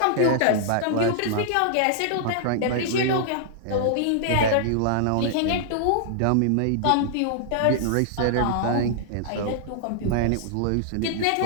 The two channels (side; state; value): both; different; correlation -0.01